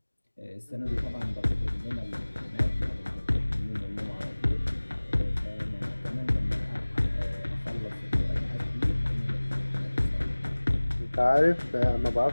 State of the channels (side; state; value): both; inverted; correlation -1.00